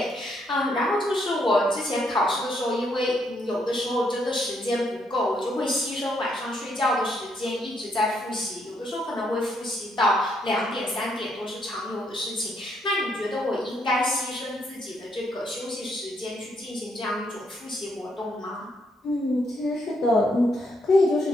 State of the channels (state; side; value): normal; both; correlation 0.74